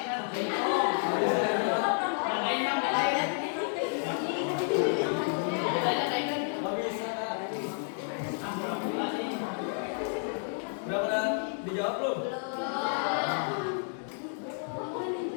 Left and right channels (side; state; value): right; silent; 57 dB below the other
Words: Nggak bisa, Kak. Udah pernah dijawab belum?